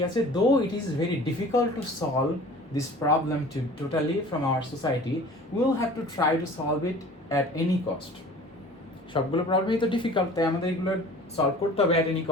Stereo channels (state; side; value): normal; both; correlation 0.44